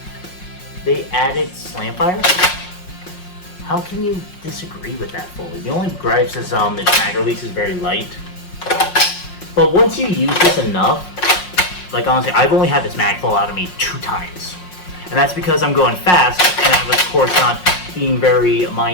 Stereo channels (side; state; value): right; late; 5.5 ms